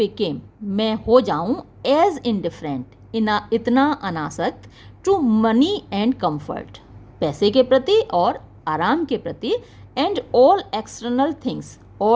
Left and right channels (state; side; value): identical; both; correlation 1.00